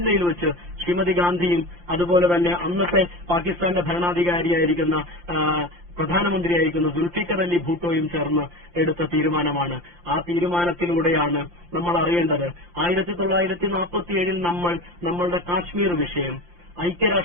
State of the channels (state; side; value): late; left; 5.7 ms